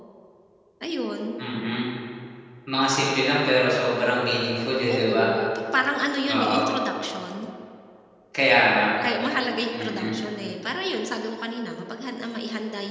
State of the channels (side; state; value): both; identical; correlation 1.00